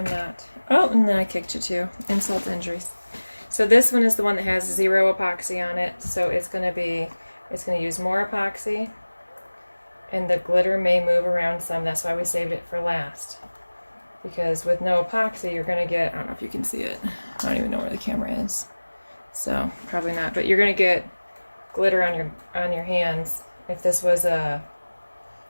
not. Oh, and then I kicked you too. Insult to injuries. So this one is the one that has 0 epoxy on it. So it's gonna use more epoxy, and the glitter may move around some. That's why we saved it for last. Because with no epoxy, you're gonna get, I don't know if you can see it. I don't even know where the camera is. So probably not, but you're gonna get glitter on your hands. If this was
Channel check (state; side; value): inverted; both; correlation -1.00